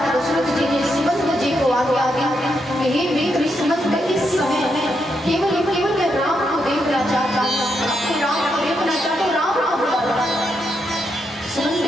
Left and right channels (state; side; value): normal; both; correlation 0.81